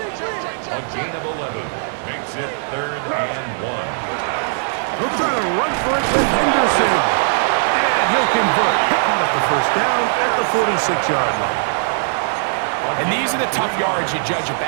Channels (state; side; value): silent; left; 66 dB below the other